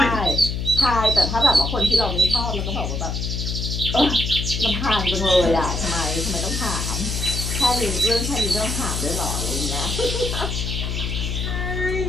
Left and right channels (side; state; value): left; noise; hum, 2 dB below the sound